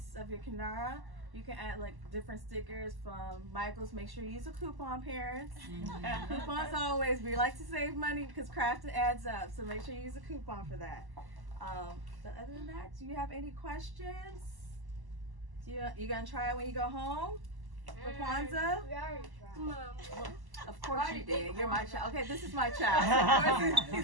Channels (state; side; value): late; left; 1.1 ms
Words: of your kinara, you can add like different stickers from Michael's. Make sure you use a coupon, parents. Coupons always. We like to save money because crafting adds up. So make sure you use a coupon for that. But other than that, do you have any questions? You gonna try it when you go home for Kwanzaa? We already tried. Of course you did. You're my child. Okay, this is my child. So of course